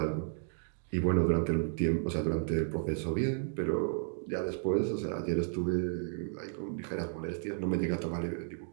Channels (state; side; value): silent; left; 56 dB below the other